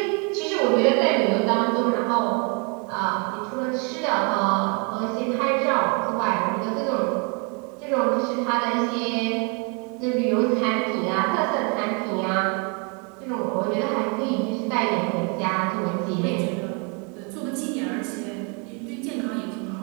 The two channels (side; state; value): left; quieter; 34.1 dB